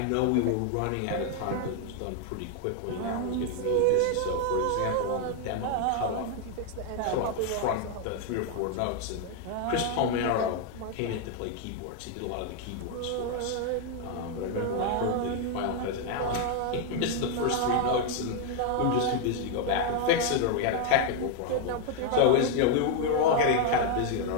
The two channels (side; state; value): both; different; correlation 0.00